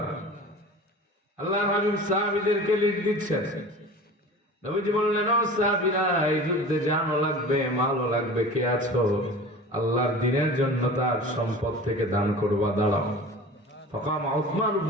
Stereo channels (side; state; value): both; normal; correlation 0.38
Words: আল্লাহর হাবিব সাহাবীদেরকে লিড দিচ্ছেন। নবীজি বললেন, ও সাহাবীরা, এই যুদ্ধে জানও লাগবে, মালও লাগবে, কে আছো আল্লাহর দ্বীনের জন্য তার সম্পদ থেকে দান করবা, দাঁড়াও। ফাকাম উসমান